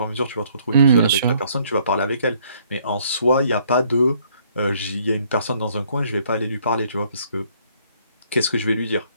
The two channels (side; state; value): both; inverted; correlation -0.64